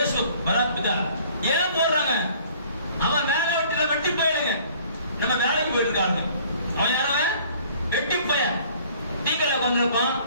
பராத் பிதா. ஏன் போடுறாங்க? அவன் வேலை விட்டு வெட்டி போயிடுங்க. நம்ம வேலைக்கு போயிட்டு இருக்காங்க, அவன் யாரவன் வெட்டி போய டீக்கல்ல கொண்டிருப்பான்,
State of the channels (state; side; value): inverted; both; correlation -0.54